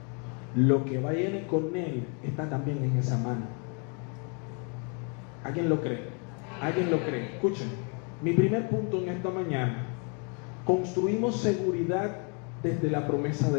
lo que viene con Él está también en esa mano. ¿Alguien lo cree? ¿Alguien lo cree? Escuchen, mi primer punto en esta mañana: construimos seguridad desde la promesa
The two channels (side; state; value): right; quieter; 37.1 dB